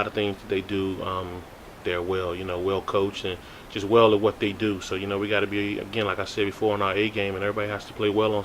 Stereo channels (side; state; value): both; identical; correlation 1.00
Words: of things that they do, they're well coached and just well at what they do. So we got to be, again, like I said before, on our A game, and everybody has to play well on